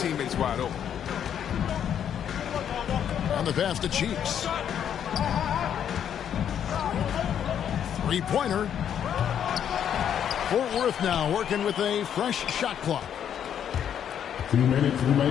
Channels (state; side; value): quieter; right; 9.1 dB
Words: wide open. On the pass to Cheeks. 3-pointer. Fort Worth now working with a fresh shot clock. 2 minutes